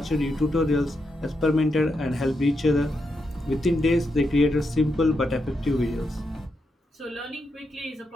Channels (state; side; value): normal; both; correlation 0.83